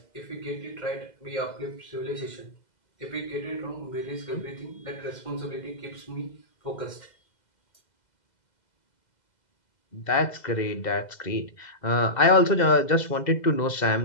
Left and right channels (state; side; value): late; right; 2.0 ms